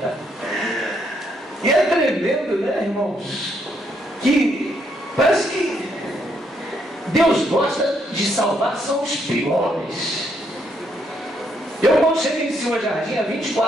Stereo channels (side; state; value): both; normal; correlation 0.74